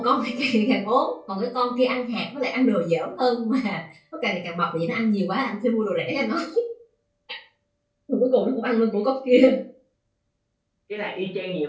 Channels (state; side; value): identical; both; correlation 1.00